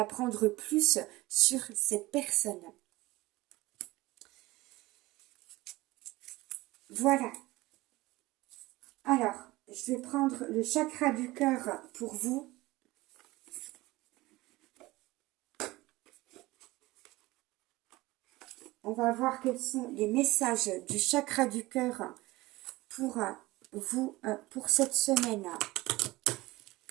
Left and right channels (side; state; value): left; quieter; 19.7 dB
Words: plus sur cette personne. Voilà. Alors, je vais prendre le chakra du cœur pour vous. On va voir quels sont les messages du chakra du cœur pour vous, pour cette semaine,